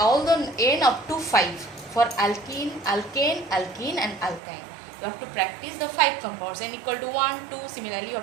the n up to 5 for alkene, alkane, alkene and alkyne. You have to practice the 5 compounds, n equal to 1, 2. Similarly, you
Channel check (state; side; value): drops out; left; at 4.4 s